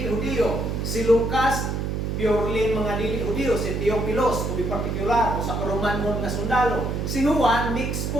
Hudyo. Si Lucas, purely mga dili Hudyo. Si Theophilus, to be particular, o sa Romanhon nga sundalo. Si Juan, mix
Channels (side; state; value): right; noise; hum, 2 dB below the sound